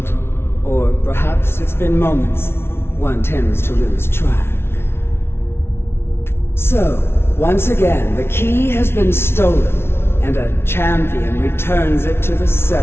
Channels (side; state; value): right; late; 0.12 ms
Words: Or perhaps it's been moments. One tends to lose track. So, once again, the key has been stolen, and a champion returns it to the